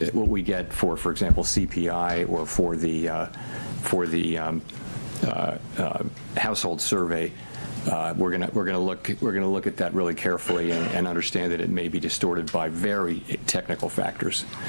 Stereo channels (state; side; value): inverted; both; correlation -1.00